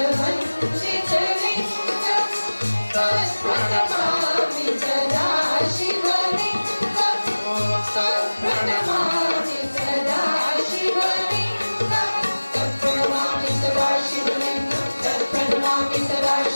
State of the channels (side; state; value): both; inverted; correlation -1.00